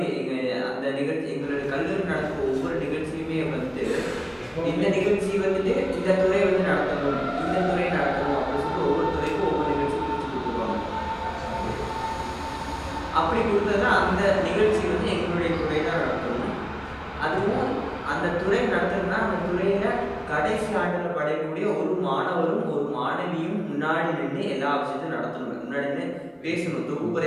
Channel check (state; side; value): identical; both; correlation 1.00